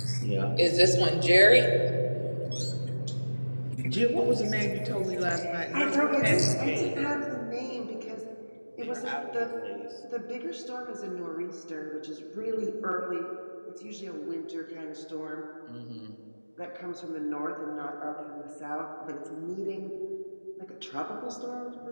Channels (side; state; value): both; inverted; correlation -1.00